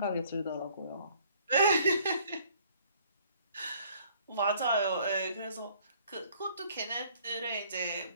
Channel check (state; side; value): inverted; both; correlation -0.59